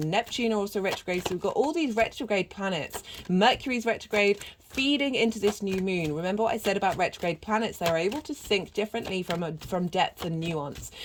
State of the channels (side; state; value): both; identical; correlation 1.00